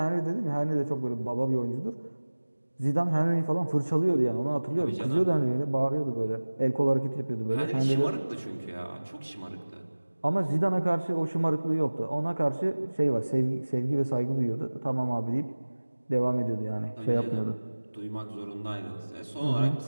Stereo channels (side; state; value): both; inverted; correlation -1.00